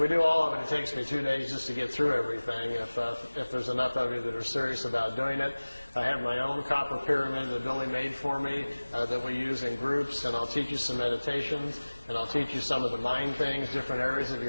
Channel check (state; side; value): inverted; both; correlation -1.00